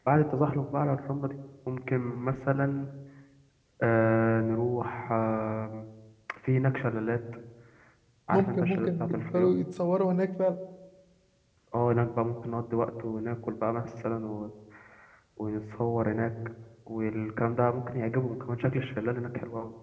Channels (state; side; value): identical; both; correlation 1.00